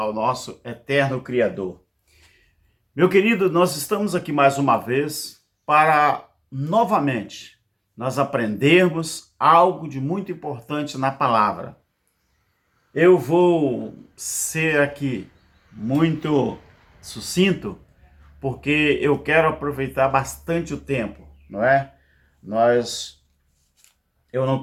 nosso eterno Criador. Meu querido, nós estamos aqui mais uma vez para novamente nós aprendermos algo de muito importante na palavra. Eu vou ser aqui muito sucinto, porque eu quero aproveitar bastante o tempo, não é? Eu não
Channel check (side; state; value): both; identical; correlation 1.00